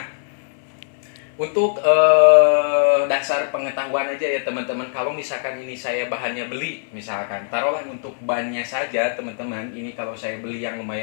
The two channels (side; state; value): right; silent; 59 dB below the other